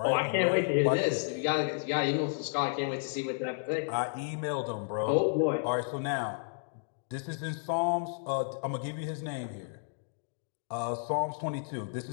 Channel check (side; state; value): right; silent; digital silence